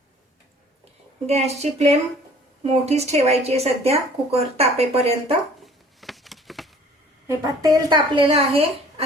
गॅसची फ्लेम मोठीच ठेवायची आहे सध्या कुकर तापेपर्यंत. हे पहा तेल तापलेलं आहे.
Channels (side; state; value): both; normal; correlation 0.52